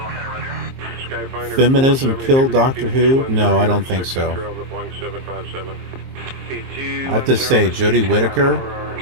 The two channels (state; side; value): late; left; 23 ms